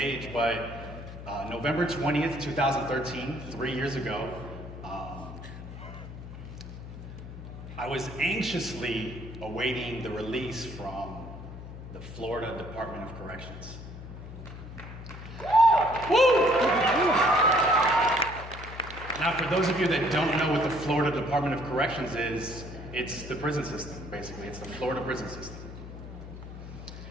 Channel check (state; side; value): noise; left; hum, 12 dB below the sound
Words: but November 20th, 2013, 3 years ago, I was anxiously awaiting the release from the Florida Department of Corrections. Woo! Now, for those of you that don't know what the Florida Department of Corrections is, it's the prison system, basically. It's the Florida prison system.